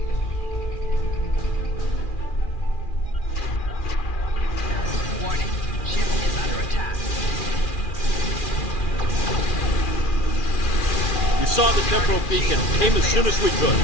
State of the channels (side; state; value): right; late; 2.4 ms